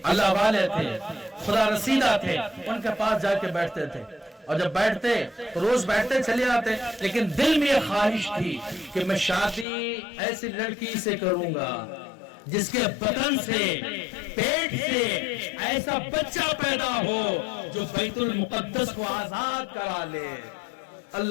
اللہ والے تھے، خدا رسیدہ تھے، ان کے پاس جا کے بیٹھتے تھے، اور جب بیٹھتے تو روز بیٹھتے چلے آتے، لیکن دل میں یہ خواہش تھی کہ میں شادی ایسی لڑکی سے کروں گا جس کے بدن سے، پیٹ سے ایسا بچہ پیدا ہو جو بیت المقدس کو آزاد کرا لے۔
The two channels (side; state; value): right; drops out; at 9.7 s